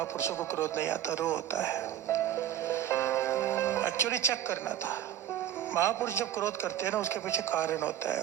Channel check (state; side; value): quieter; left; 11.1 dB